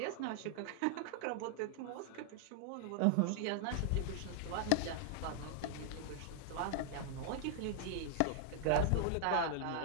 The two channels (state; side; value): different; both; correlation 0.00